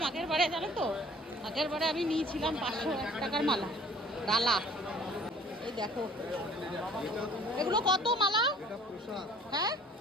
আগের বারে, জানো তো, আগের বারে আমি নিয়েছিলাম 501 টাকার মালা, ডালা। এই দেখো এগুলো কত মালা? হ্যাঁ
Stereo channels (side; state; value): both; normal; correlation 0.52